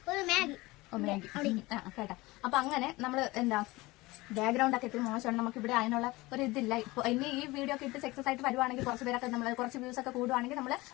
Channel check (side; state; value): right; quieter; 21.1 dB